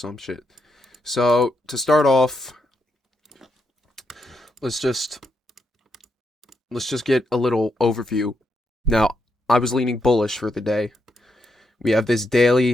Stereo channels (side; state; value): both; normal; correlation 0.81